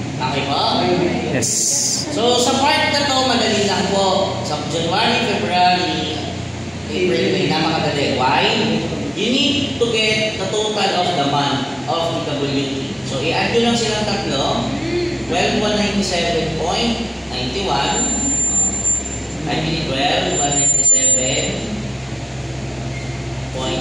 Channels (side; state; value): both; identical; correlation 1.00